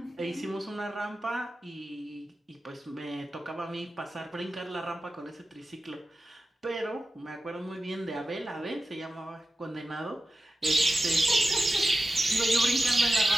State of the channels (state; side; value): normal; both; correlation 0.94